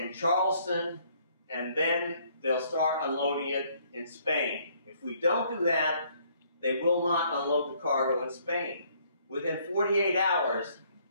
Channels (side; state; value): both; inverted; correlation -0.64